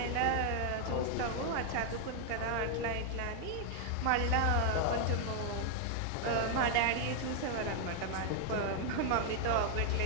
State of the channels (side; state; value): both; different; correlation 0.00